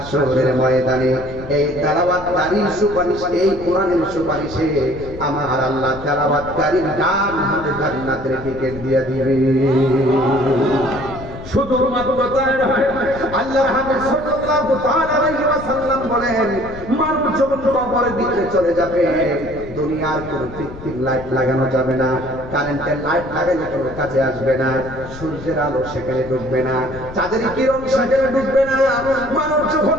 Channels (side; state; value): left; noise; rumble, 14 dB below the sound